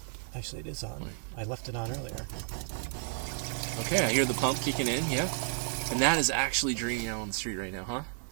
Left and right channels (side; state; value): left; silent; digital silence